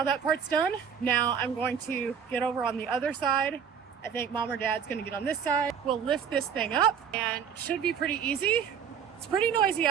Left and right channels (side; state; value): left; quieter; 7.5 dB